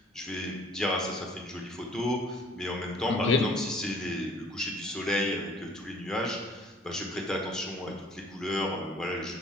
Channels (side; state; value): both; normal; correlation 0.54